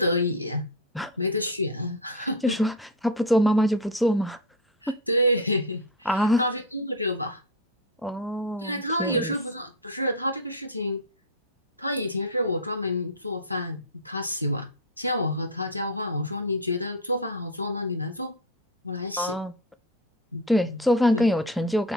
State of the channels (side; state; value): both; normal; correlation 0.13